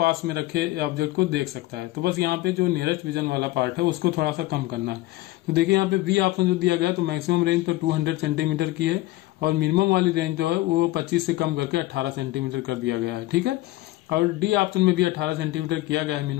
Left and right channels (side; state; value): right; quieter; 17.7 dB